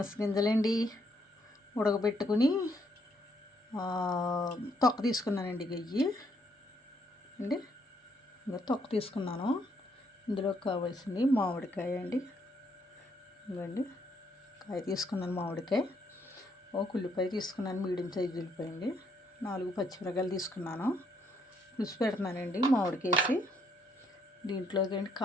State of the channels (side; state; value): both; normal; correlation 0.72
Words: గింజలండి ఉడకబెట్టుకుని తొక్క తీసుకున్నానండి. గయ్యి అండి ఇంకా తొక్క తీసుకున్నాను. ఇందులో కావాల్సింది మామిడికాయ అండి. ఇవ్వండి కాయ తీసుకున్నాను. మామిడికాయ ఒక ఉల్లిపాయ తీసుకున్నాను. మీడియం సైజు ఉల్లిపాయ అండి. 4 పచ్చిమిరపకాయలు తీసుకున్నాను. పులుసు పెడుతున్నానండి మామిడికేసి. దీంట్లోకి